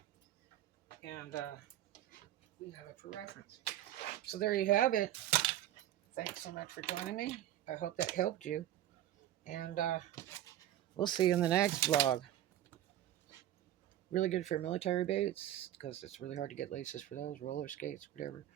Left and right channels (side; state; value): left; quieter; 12.7 dB